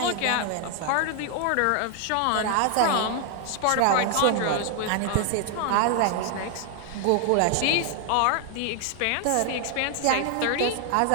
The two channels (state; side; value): different; both; correlation 0.00